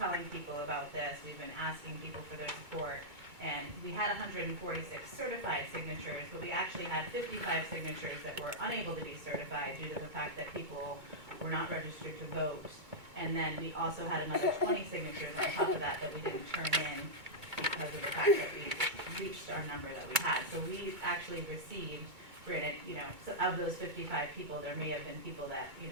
people about this, we've been asking people for their support, and we had 146 certified signatures, but we actually had 55 signatures that were unable to be certified due to the fact that people were not registered to vote. And then we also had another 20 signatures on top of that we didn't turn in because of the fact that we reached our number that we had. So we actually received, granted, so of those 55 people, there may have been people that,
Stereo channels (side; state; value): left; late; 2.2 ms